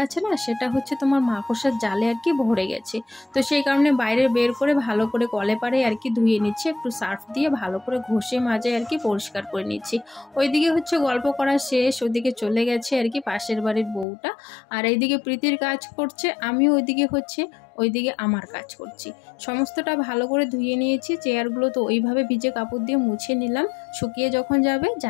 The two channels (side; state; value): right; drops out; at 14.1 s